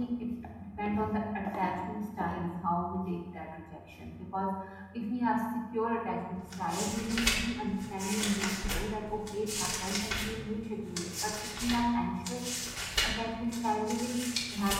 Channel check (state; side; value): identical; both; correlation 1.00